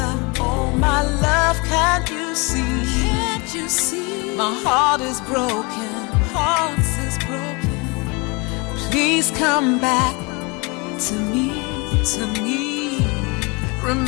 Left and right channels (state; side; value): quieter; right; 28.7 dB